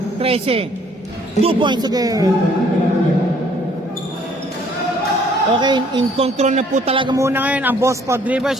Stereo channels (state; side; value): normal; both; correlation 0.61